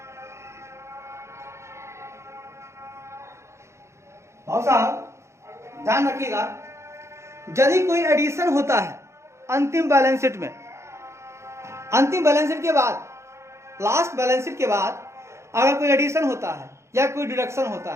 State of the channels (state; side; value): late; left; 0.13 ms